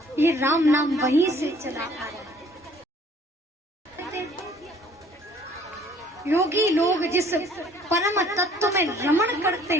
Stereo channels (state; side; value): normal; both; correlation 0.57